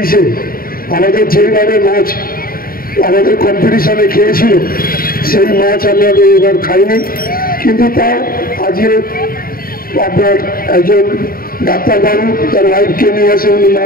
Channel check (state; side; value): late; right; 0.42 ms